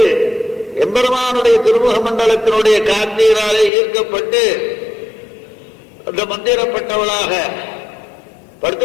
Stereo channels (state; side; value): drops out; right; at 3.7 s